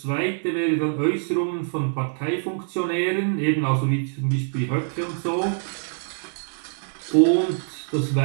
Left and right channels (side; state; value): left; silent; 62 dB below the other